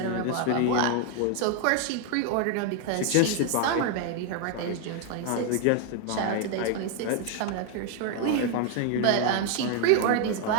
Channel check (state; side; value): different; both; correlation 0.01